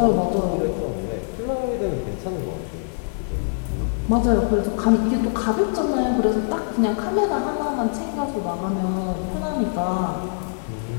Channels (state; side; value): silent; right; digital silence